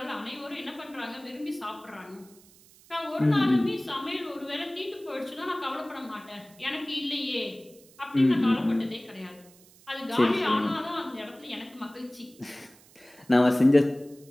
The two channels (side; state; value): right; noise; hiss, 26 dB below the sound